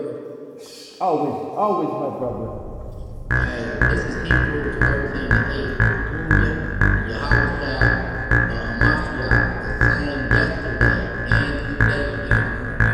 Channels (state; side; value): identical; both; correlation 1.00